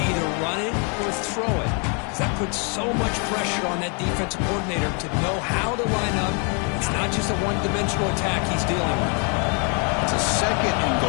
either run it or throw it. Because that puts so much pressure on that defensive coordinator to know how to line up. It's not just a one-dimensional attack he's dealing with. It's a 2nd and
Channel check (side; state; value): right; quieter; 37.0 dB